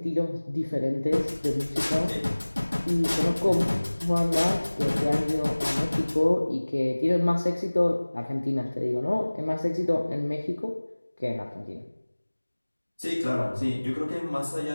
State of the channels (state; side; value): inverted; both; correlation -1.00